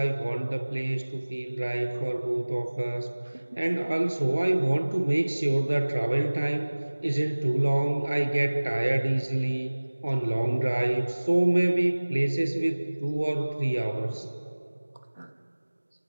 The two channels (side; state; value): both; inverted; correlation -1.00